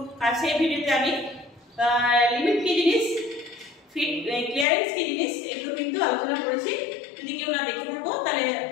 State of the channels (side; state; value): right; drops out; at 4.7 s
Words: সেই ভিডিওতে আমি লিমিট কি জিনিস, ফিট ক্লিয়ারেন্স কি জিনিস এগুলো কিন্তু আলোচনা করেছি। যদি কেউ না দেখে থাকো তাহলে